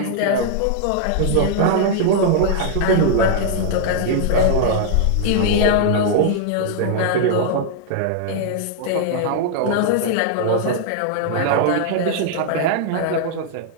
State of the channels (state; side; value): different; both; correlation -0.01